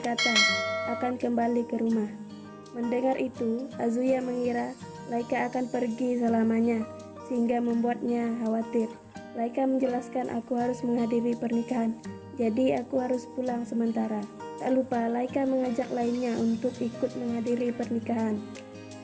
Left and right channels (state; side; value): identical; both; correlation 1.00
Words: akan kembali ke rumah. Mendengar itu, Azuya mengira Laika akan pergi selamanya, sehingga membuatnya khawatir. Laika menjelaskan, aku harus menghadiri pernikahan, jadi aku harus pulang sementara. Tak lupa, Laika mengajak lainnya untuk ikut menghadiri pernikahan.